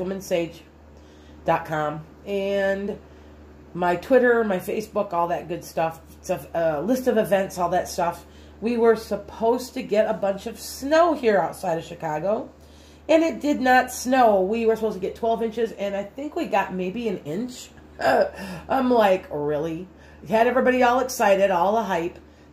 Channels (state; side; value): identical; both; correlation 1.00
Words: and my Twitter, my Facebook, all that good stuff. It's a list of events, all that stuff. We were supposed to get a bunch of snow here outside of Chicago, and it did not snow. We were supposed to get 12 inches, and I think we got maybe an inch. I'm like, really? Had everybody all excited, all the hype.